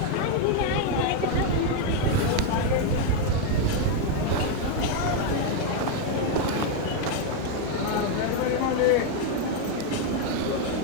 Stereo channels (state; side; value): different; both; correlation 0.01